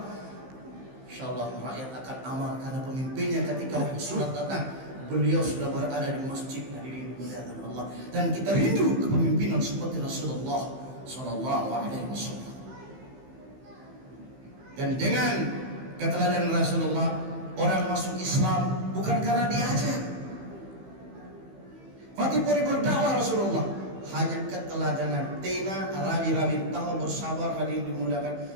Insyaallah rakyat akan aman karena pemimpinnya ketika sholat datang beliau sudah berada di masjid hadirin dimuliakan Allah. Dan kita rindu kepemimpinan seperti Rasulullah Sallallahu Alaihi Wasallam. Dan dengan keteladanan Rasulullah orang masuk Islam bukan karena diajak. Fatih Puri berdakwah Rasulullah hanya keteladanan tena rabi-rabi tahu bersabar hadirin dimuliakan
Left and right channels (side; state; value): left; late; 15 ms